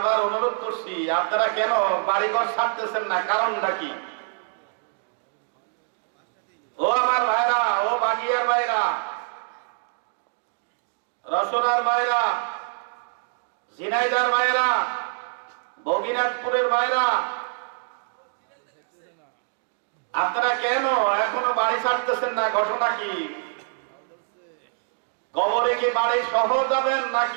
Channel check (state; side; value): silent; left; digital silence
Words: অনুরোধ করছি, আপনারা কেন বাড়িঘর ছাড়তেছেন না? কারণটা কি? ও আমার ভাইরা, ও বাগিয়ার ভাইরা, রসনার ভাইরা, ঝিনাইদার ভাইরা, বগিনাথপুরের ভাইরা, আপনারা কেন এখনো বাড়ি ছাড়তেছেন না? ঘটনা কি? কবরে কি বাড়ি সহ যাবেন